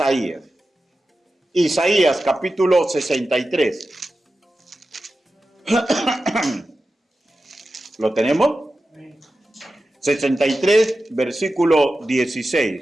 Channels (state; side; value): normal; both; correlation 0.93